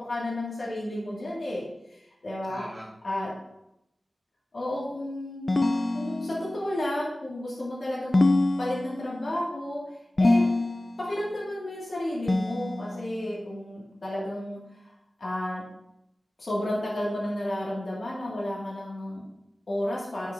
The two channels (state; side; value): normal; both; correlation 0.97